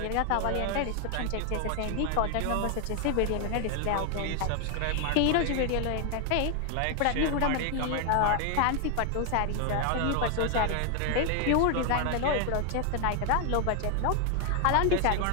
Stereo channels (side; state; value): both; different; correlation 0.00